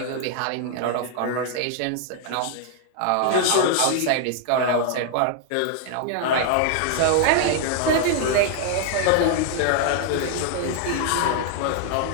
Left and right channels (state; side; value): different; both; correlation 0.00